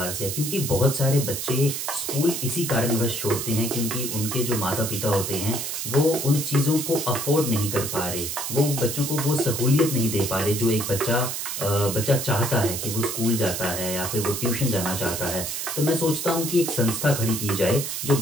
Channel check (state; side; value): noise; right; hiss, 4 dB below the sound